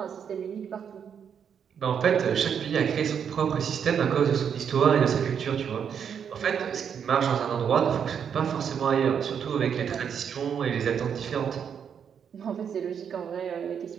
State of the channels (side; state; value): left; quieter; 7.6 dB